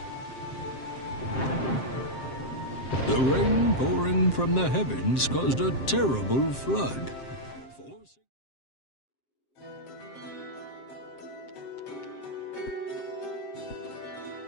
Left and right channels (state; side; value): late; right; 7.6 ms